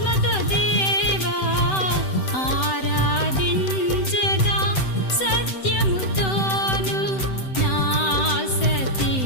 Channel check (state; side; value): late; right; 7.8 ms